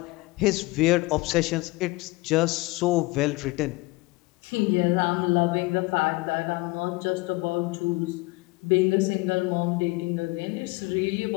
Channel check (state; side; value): quieter; right; 23.0 dB